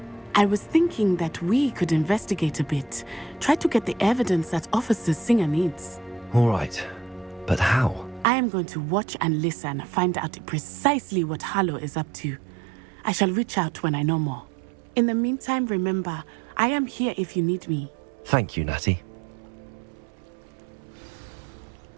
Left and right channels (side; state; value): left; drops out; at 8.2 s